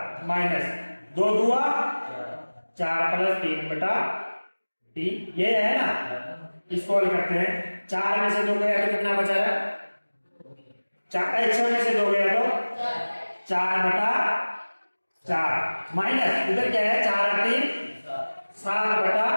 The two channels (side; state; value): both; inverted; correlation -1.00